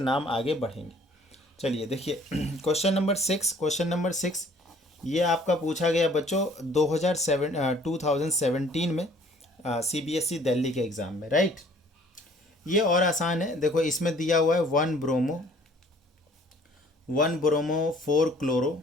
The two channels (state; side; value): normal; both; correlation 0.56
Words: नाम आगे बढ़ेंगे। चलिए देखिए क्वेश्चन नंबर 6। क्वेश्चन नंबर 6 ये आपका पूछा गया बच्चों 2017 में CBSE दिल्ली के एग्ज़ाम में, राइट। ये और आसान है। देखो इसमें दिया हुआ है 1 bromo, 1 bromo 4 chloro,